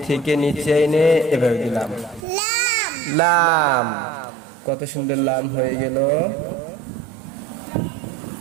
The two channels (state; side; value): drops out; left; at 2.2 s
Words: থেকে নিচে এনে এভাবে দিলাম, লাম। কত সুন্দর লাম হয়ে গেল,